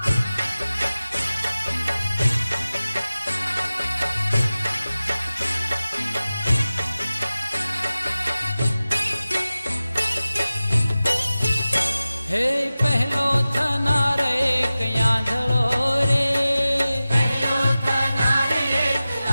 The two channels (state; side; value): inverted; both; correlation -0.96